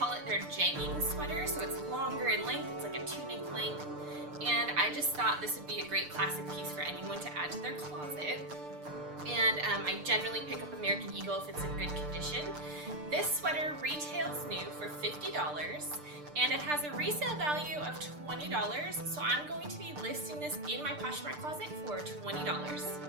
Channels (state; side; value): late; left; 6.7 ms